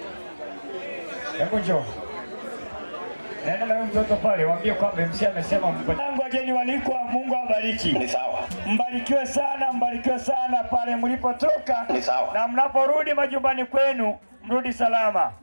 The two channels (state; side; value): inverted; both; correlation -1.00